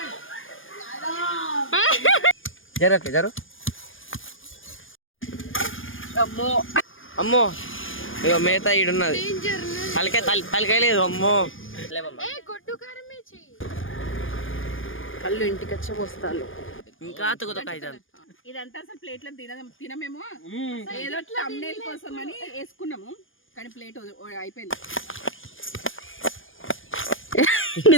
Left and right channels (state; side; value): late; right; 0.58 ms